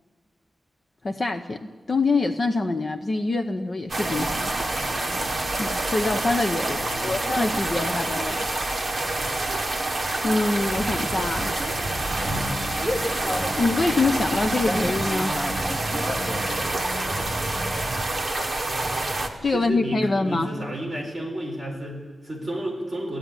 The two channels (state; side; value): normal; both; correlation 0.90